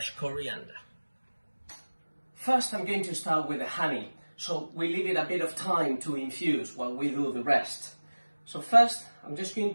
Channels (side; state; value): both; inverted; correlation -1.00